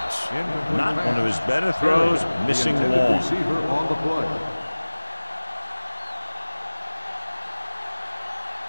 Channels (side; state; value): both; inverted; correlation -1.00